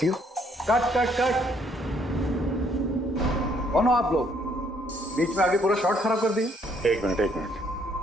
हो? Cut cut cut. कौन हो आप लोग? बीच में आगे पूरा शॉट खराब कर दिया। एक मिनट,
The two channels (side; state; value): both; normal; correlation 0.67